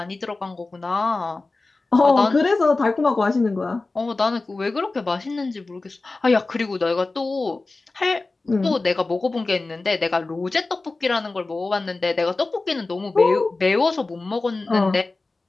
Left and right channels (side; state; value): right; quieter; 3.4 dB